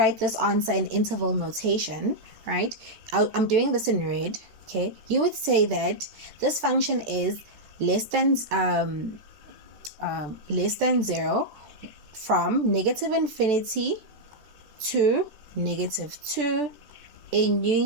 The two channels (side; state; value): left; late; 14 ms